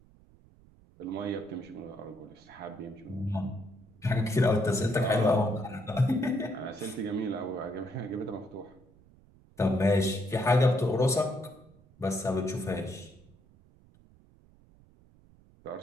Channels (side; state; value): right; noise; rumble, 27 dB below the sound